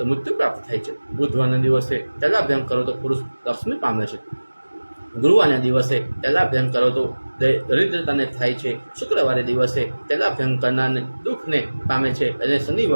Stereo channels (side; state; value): both; inverted; correlation -1.00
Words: મૃત્યુ પ્રાપ્ત થાય છે, બુધવારના દિવસે તૈલાભ્યંગ કરો તો પુરુષ લક્ષ્મી પામે છે, ગુરુવારના દિવસે તૈલાભ્યંગ કરો તો દરિદ્રતાને થાય છે, શુક્રવારે દિવસે તૈલાભ્યંગ કરનારને દુઃખને પામે છે અને